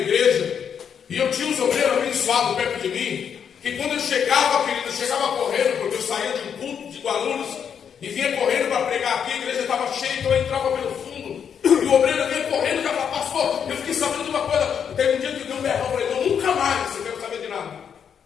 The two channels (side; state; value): right; quieter; 7.7 dB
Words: e eu tinha uns obreiros abençoados perto de mim, que quando eu chegava, querido, eu chegava correndo, porque eu saía de um culto de Guarulhos, e vinha correndo para pregar aqui, a igreja estava cheia, então eu entrava pelo fundo, e o obreiro vinha correndo, e falava, pastor, eu fiquei sabendo de uma coisa, teve um dia que eu dei um berrão, falei, não, nunca mais eu quero saber de nada.